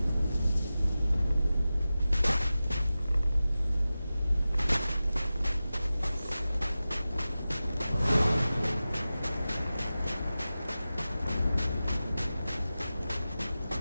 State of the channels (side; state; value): both; inverted; correlation -0.95